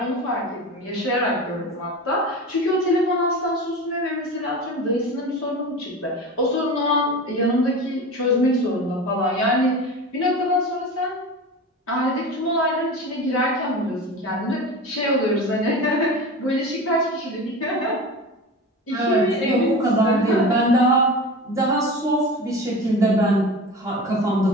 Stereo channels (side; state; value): both; normal; correlation 0.30